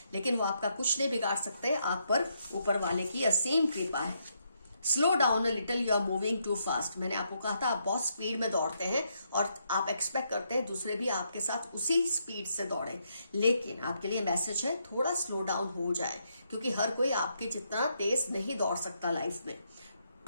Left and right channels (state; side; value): inverted; both; correlation -0.77